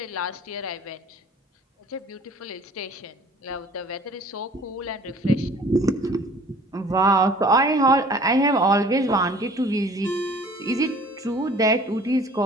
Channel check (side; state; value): both; normal; correlation 0.50